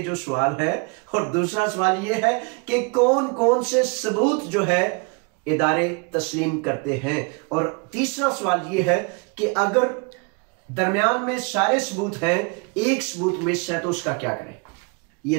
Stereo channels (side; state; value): left; quieter; 32.3 dB